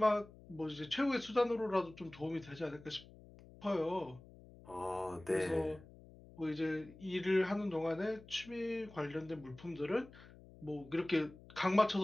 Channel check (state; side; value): noise; left; hum, 20 dB below the sound